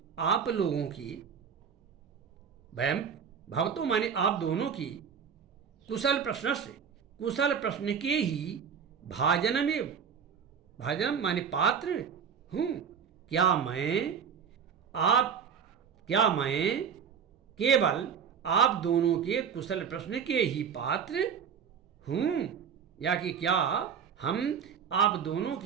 आप लोगों की, वयम भवतो माने आप दोनों की, कुशल प्रश्न से कुशल प्रश्न के ही भाजनम एव, भाजनम माने पात्र हूँ, क्या मैं केवल आप दोनों के कुशल प्रश्न के ही पात्र हूँ, या कि क्या हम आप दोनों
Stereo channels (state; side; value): quieter; left; 7.2 dB